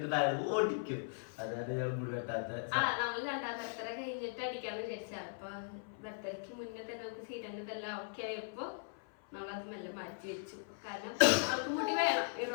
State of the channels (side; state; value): right; silent; 52 dB below the other